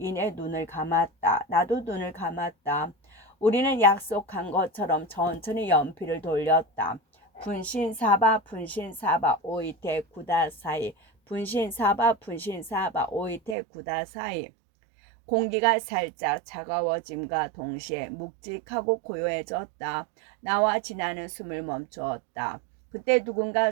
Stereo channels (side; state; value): left; drops out; at 13.6 s